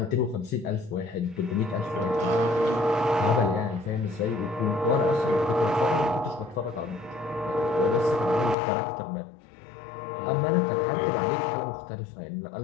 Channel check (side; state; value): right; drops out; at 8.6 s